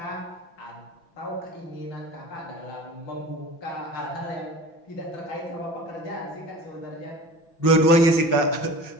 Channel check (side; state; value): right; late; 6.0 ms